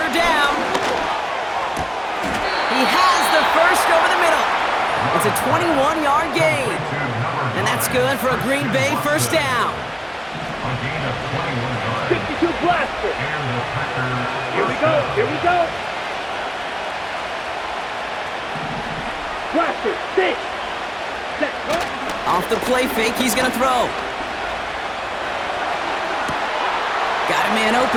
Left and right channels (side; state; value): both; identical; correlation 1.00